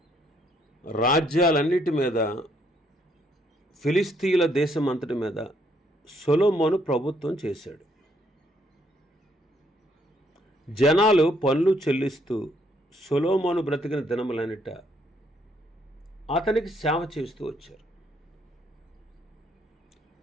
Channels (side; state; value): both; normal; correlation 0.70